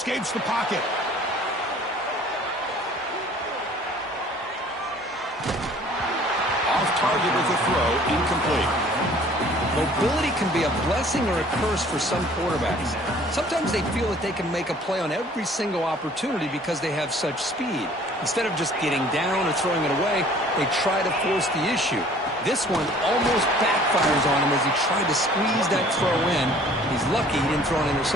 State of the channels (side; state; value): both; normal; correlation 0.53